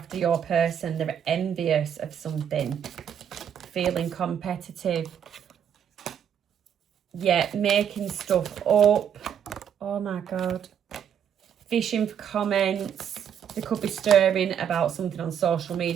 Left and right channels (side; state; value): left; quieter; 8.6 dB